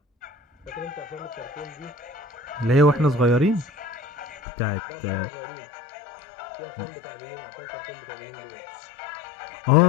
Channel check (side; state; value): right; drops out; at 4.4 s